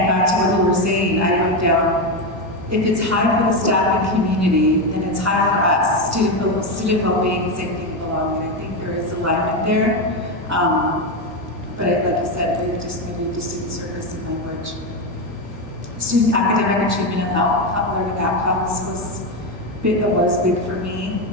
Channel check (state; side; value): normal; both; correlation 0.11